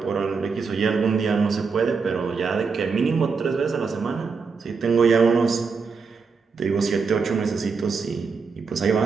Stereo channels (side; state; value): left; quieter; 5.1 dB